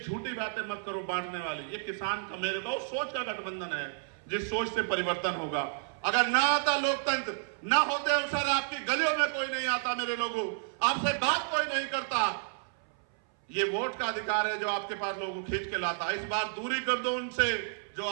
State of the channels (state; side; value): silent; left; 57 dB below the other